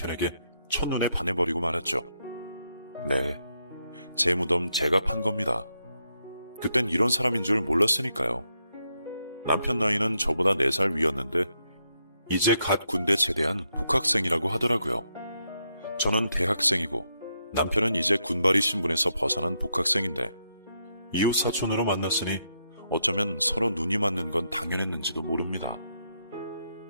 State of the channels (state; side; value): inverted; both; correlation -0.80